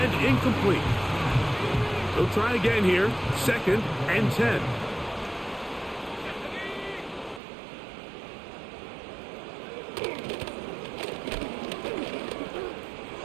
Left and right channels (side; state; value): left; drops out; at 7.4 s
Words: incomplete. He'll try again here. 2nd and 10.